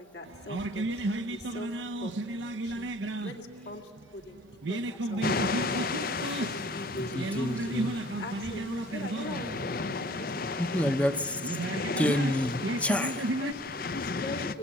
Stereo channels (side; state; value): both; normal; correlation 0.52